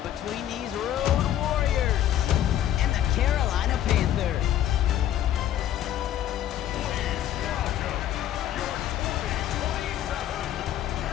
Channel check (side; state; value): right; quieter; 11.6 dB